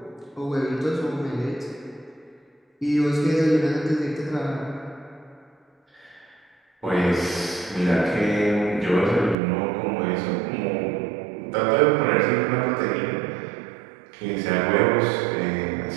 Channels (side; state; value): left; drops out; at 9.3 s